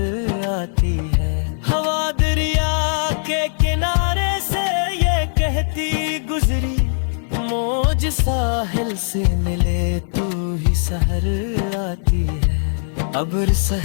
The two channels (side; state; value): right; silent; digital silence